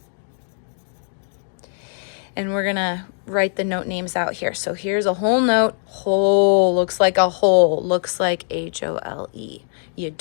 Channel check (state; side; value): silent; right; digital silence